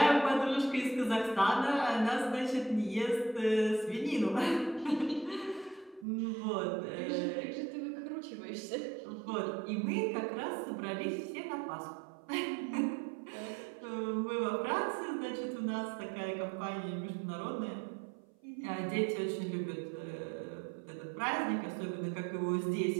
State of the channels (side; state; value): left; drops out; at 6.1 s